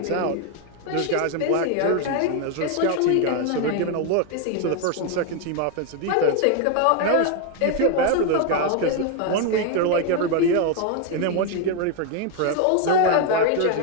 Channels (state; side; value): different; both; correlation 0.01